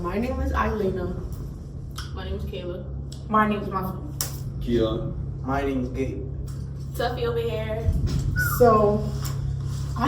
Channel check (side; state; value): both; identical; correlation 1.00